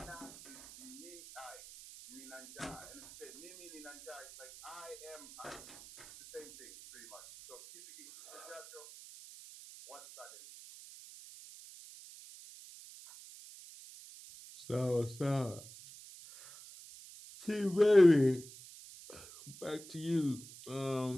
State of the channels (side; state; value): right; noise; hiss, 16 dB below the sound